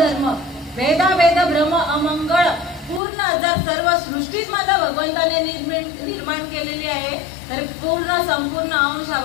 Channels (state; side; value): drops out; right; at 3.0 s